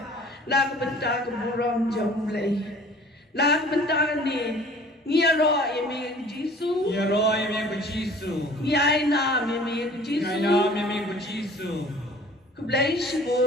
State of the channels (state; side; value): normal; both; correlation 0.49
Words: la benta ke buram jom lei la benta ni ngiro yemi Jisu ngiro yemi ko Jisu yaina yemi ko Jisu yaina yemi ko Jisu ku blai